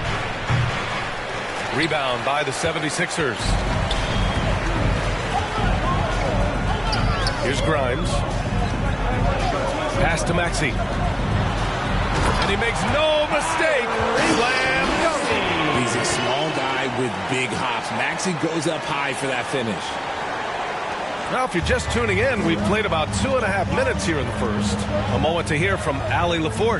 Rebound by the 76ers. Here's Grimes. Pass to Maxey. And he makes no mistake. Slam dunk. He's a small guy with big hops. Maxey goes up high for that finish. Now, if you're just tuning in, we've played about 2.5 minutes here in the first. A moment to hear from Allie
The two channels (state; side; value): identical; both; correlation 1.00